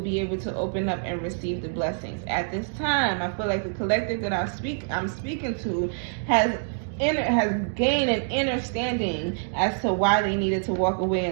able to open up and receive the blessings. At this time, I feel like the collective that I'm speaking to has gained an understanding as to why they needed to walk away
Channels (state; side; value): silent; left; digital silence